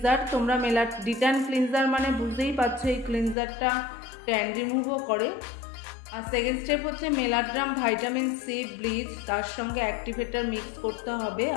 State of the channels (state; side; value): drops out; right; at 3.4 s